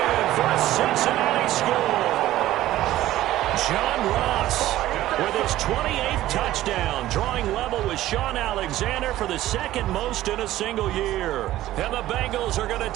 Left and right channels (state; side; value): quieter; left; 14.7 dB